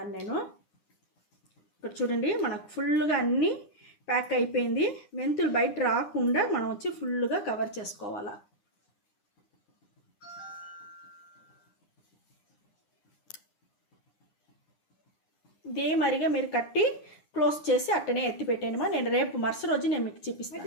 నేను ఇక్కడ చూడండి, మనకు ఫుల్గా అన్నీ ప్యాక్ అయిపోయింది. మెంతులు బయట రాకుండా మనం వచ్చి ఫుల్గా కవర్ చేసుకోవాలా. ఇదే మరిగా మీరు కట్టి క్లోజ్ చేసి అట్టనే ఎత్తి పెట్టేయమా. నేను రేపు మరుసటి రోజు నేను మీకు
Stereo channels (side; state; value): right; late; 9.8 ms